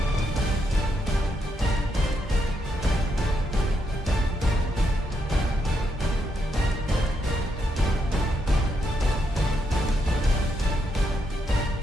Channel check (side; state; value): both; normal; correlation 0.80